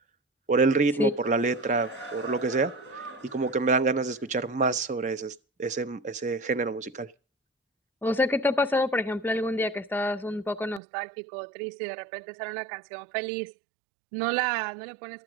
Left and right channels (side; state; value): left; drops out; at 10.8 s